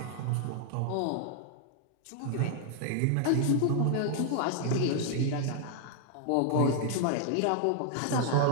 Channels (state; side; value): different; both; correlation 0.00